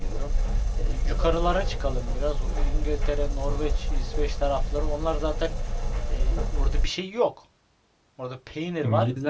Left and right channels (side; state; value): both; identical; correlation 1.00